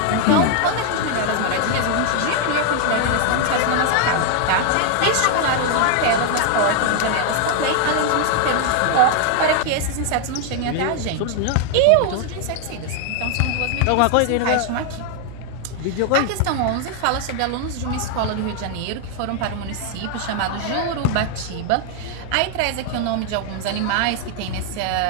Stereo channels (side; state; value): both; different; correlation 0.00